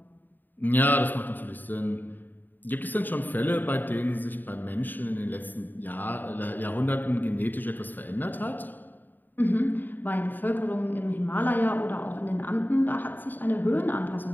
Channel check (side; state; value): right; late; 0.089 ms